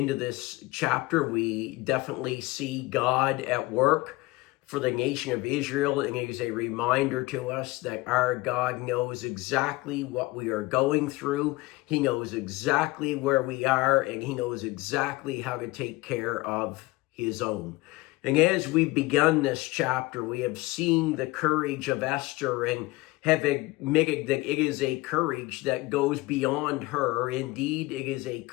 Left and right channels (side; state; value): right; quieter; 20.9 dB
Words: this chapter, we definitely see God at work for the nation of Israel, and it is a reminder to us that our God knows exactly what we are going through. He knows exactly where we are, and He knows exactly how to take care of His own. And as we've begun this chapter, we have seen the courage of Esther and have admitted that it is a courage that goes beyond her. Indeed, it is a